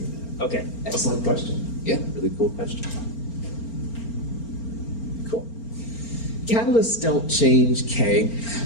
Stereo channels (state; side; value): late; right; 4.4 ms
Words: Okay. Excellent question. Yeah, really cool question. Cool. Catalysts don't change K,